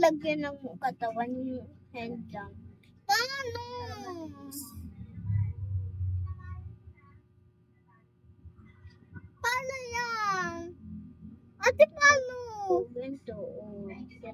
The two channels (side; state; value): both; identical; correlation 1.00